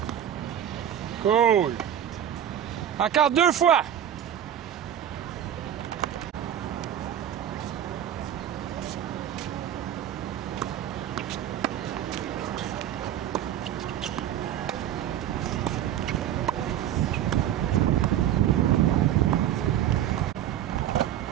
Cool. Encore 2 fois.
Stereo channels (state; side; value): quieter; left; 10.5 dB